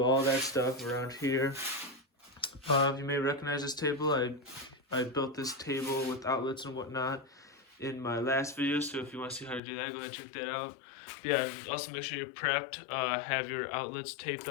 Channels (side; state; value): right; drops out; at 9.6 s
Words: all that stuff around here. You may recognize this table. I built this table with outlets and whatnot in my last video, so if you want to see how to do that, go ahead and check that out. But yeah, also make sure you're prepped. Have your outlets taped